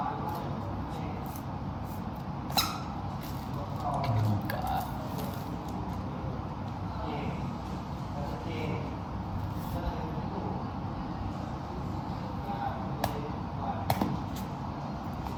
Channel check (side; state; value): both; identical; correlation 1.00